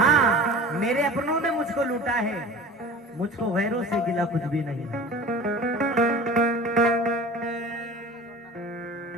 मेरे अपनों ने मुझको लूटा है, मुझको गैरों से गिला कुछ भी नहीं।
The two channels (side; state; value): both; normal; correlation 0.39